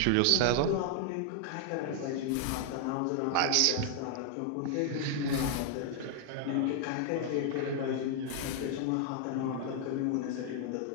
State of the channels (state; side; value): different; both; correlation 0.00